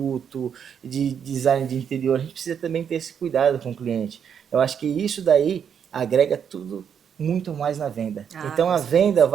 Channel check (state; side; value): quieter; left; 7.8 dB